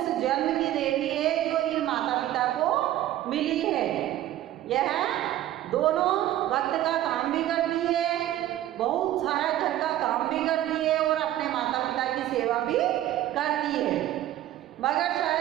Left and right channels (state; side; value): quieter; left; 13.5 dB